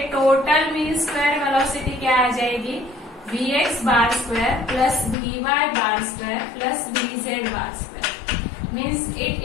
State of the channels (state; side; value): drops out; right; at 5.2 s